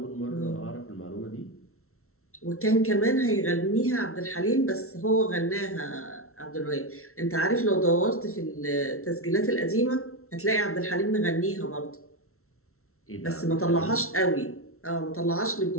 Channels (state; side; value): late; right; 0.63 ms